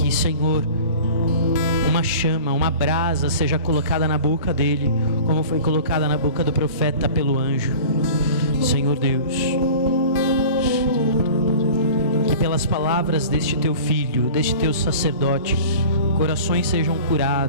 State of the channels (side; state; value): both; inverted; correlation -0.41